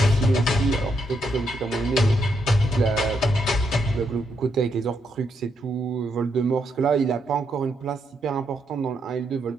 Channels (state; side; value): normal; both; correlation 0.78